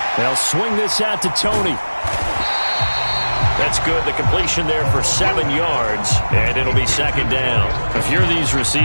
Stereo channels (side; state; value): both; inverted; correlation -1.00